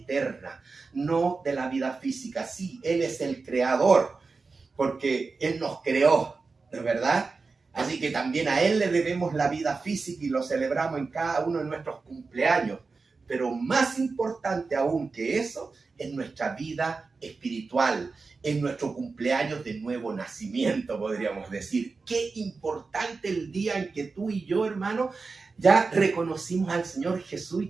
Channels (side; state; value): left; quieter; 4.3 dB